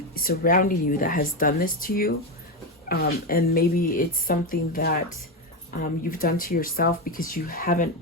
surrounding you that has done this to you. And maybe it's something that you've done to yourself because you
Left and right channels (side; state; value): both; normal; correlation 0.12